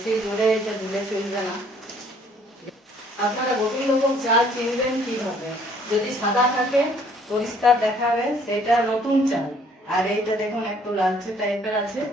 জোরে এটা ধুলে চলবে না। আপনারা গোবিন্দভোগ চাল চিনবেন কিভাবে? যদি সাদা থাকে পরিষ্কার দেখাবে সেটা নতুন চাল, আর এইটা দেখুন একটু লালচে টাইপের আছে,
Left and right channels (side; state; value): both; normal; correlation 0.60